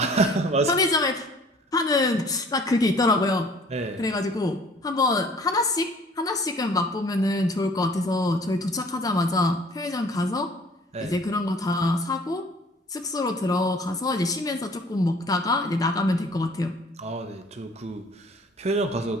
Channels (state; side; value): normal; both; correlation 0.53